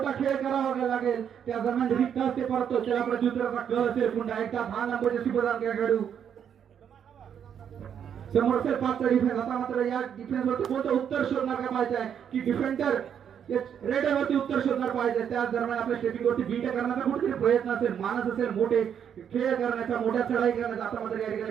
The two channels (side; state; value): left; quieter; 8.4 dB